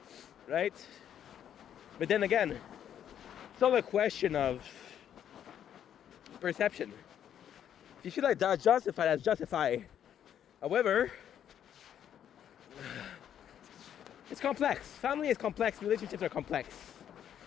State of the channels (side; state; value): right; quieter; 9.7 dB